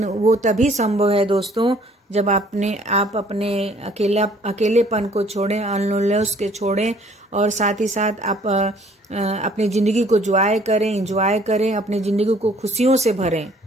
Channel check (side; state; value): both; normal; correlation 0.58